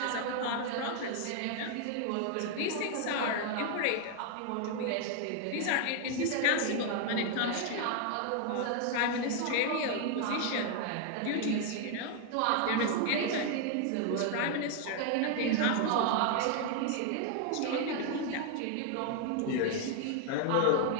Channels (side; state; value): both; different; correlation 0.00